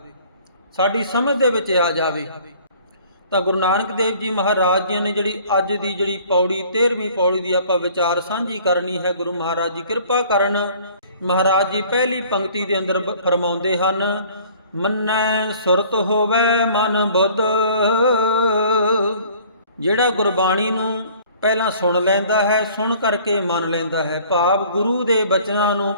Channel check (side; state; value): both; inverted; correlation -0.53